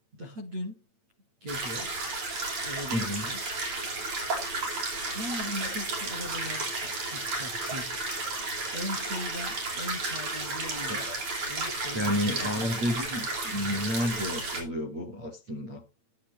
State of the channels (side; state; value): left; late; 8.8 ms